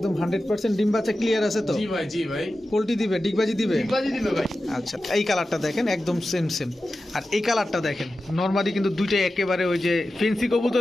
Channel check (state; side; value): normal; both; correlation 0.93